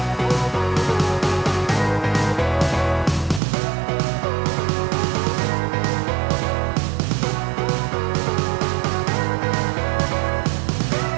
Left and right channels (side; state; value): left; drops out; at 3.4 s